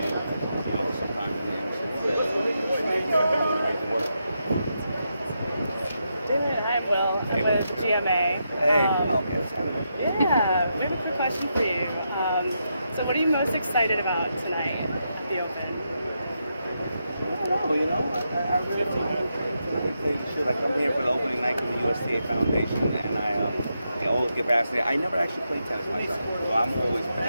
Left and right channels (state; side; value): inverted; both; correlation -0.84